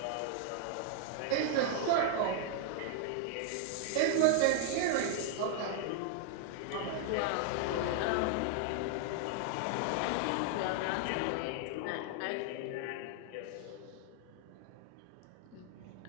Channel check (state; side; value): different; both; correlation 0.00